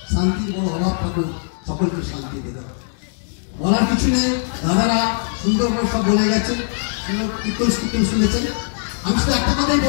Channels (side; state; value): right; silent; digital silence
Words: শান্তির বড় অভাব থাকুক, সকলকে শান্তিতে দাও। বলার কিছু নেই, দাদারা সুন্দর করে সব বলে গেছেন, সুন্দর কীর্তন শুনেছেন। আমি শুধু একটা কথাই